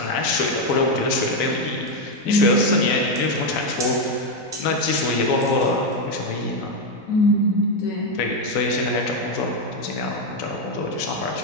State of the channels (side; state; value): right; late; 4.0 ms